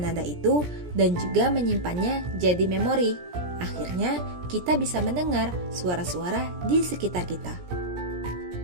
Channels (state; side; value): late; left; 17 ms